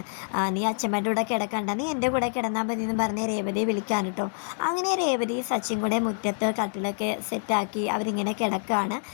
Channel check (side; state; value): right; silent; 58 dB below the other